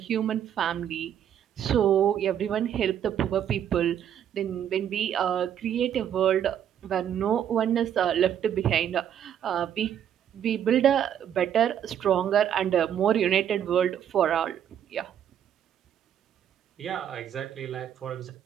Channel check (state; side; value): quieter; left; 9.6 dB